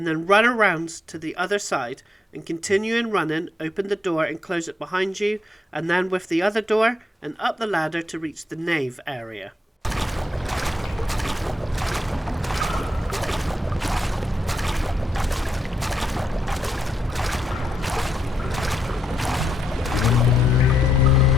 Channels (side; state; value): both; normal; correlation 0.79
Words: then run around to the other side and continuing running, open the door and close it behind you, and then with the other door and up the ladder to reach the Nave area.